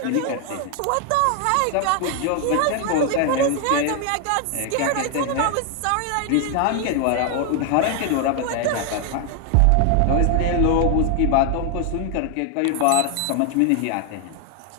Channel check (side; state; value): both; different; correlation 0.00